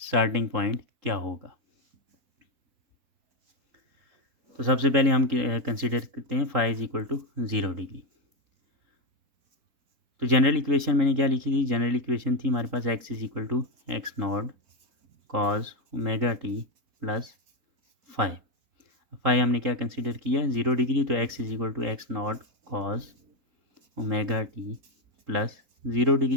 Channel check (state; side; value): late; left; 3.8 ms